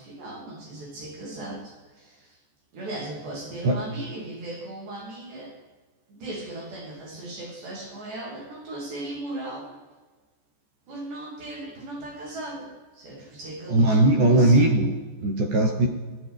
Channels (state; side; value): late; left; 14 ms